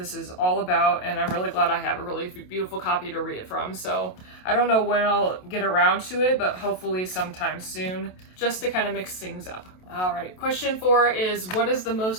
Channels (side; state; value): right; late; 27 ms